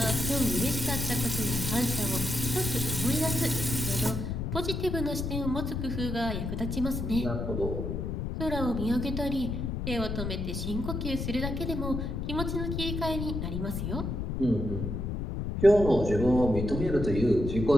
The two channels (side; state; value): left; noise; rumble, 3 dB below the sound